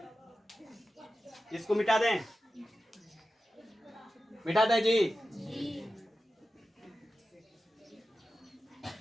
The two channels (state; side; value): normal; both; correlation 0.93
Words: इसको मिटा दें, मिटा दें जी।